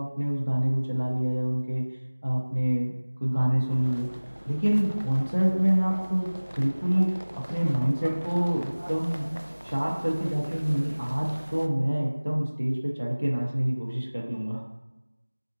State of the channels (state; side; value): inverted; both; correlation -1.00